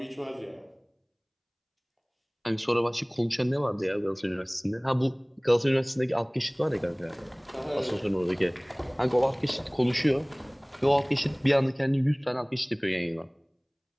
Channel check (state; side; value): identical; both; correlation 1.00